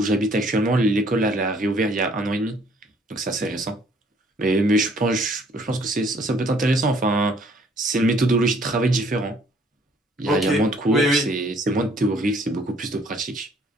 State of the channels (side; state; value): both; normal; correlation 0.62